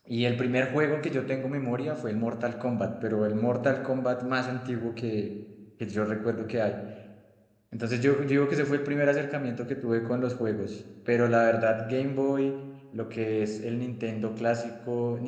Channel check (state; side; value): identical; both; correlation 1.00